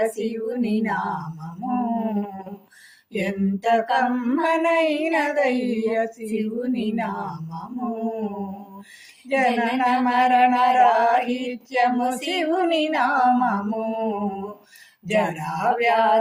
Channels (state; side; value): identical; both; correlation 1.00